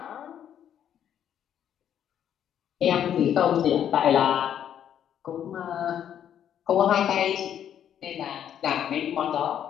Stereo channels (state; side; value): quieter; right; 9.7 dB